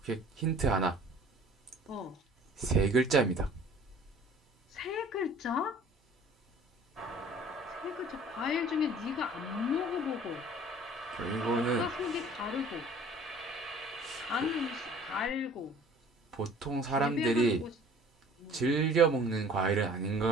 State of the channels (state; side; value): normal; both; correlation 0.50